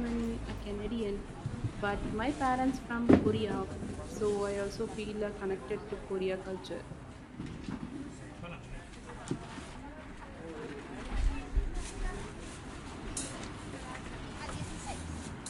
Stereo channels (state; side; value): identical; both; correlation 1.00